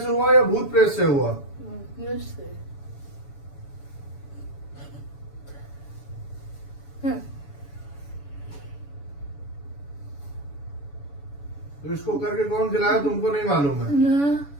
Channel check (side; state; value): right; late; 7.0 ms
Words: हुआ या भूत प्रेत से हुआ? से। तो इसको करके कौन खिलाया तुमको नहीं मालूम है?